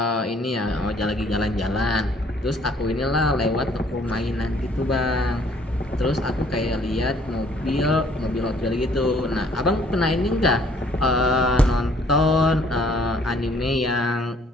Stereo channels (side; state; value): both; normal; correlation 0.61